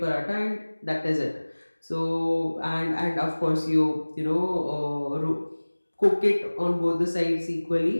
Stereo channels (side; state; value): both; inverted; correlation -1.00